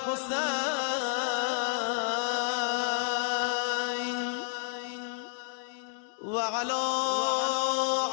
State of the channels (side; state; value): right; silent; digital silence